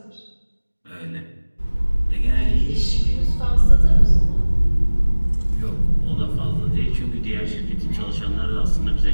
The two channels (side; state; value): both; inverted; correlation -1.00